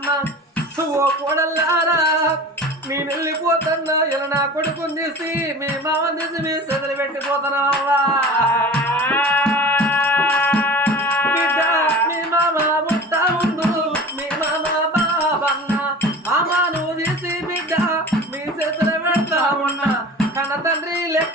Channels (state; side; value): normal; both; correlation 0.38